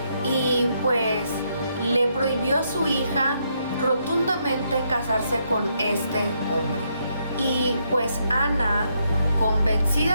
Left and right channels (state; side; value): inverted; both; correlation -0.77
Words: y pues le prohibió a su hija rotundamente casarse con este hombre. Y pues Ana,